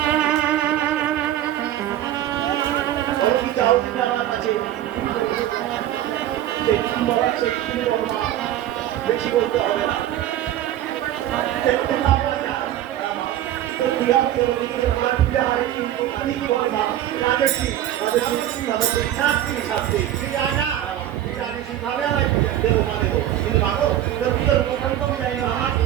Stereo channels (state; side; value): quieter; left; 12.3 dB